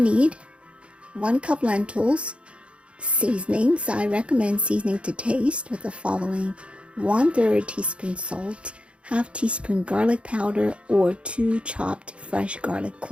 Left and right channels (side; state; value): left; late; 0.059 ms